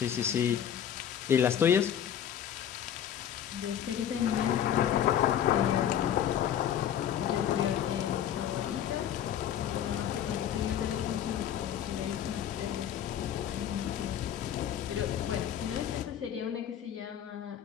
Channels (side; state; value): right; quieter; 9.8 dB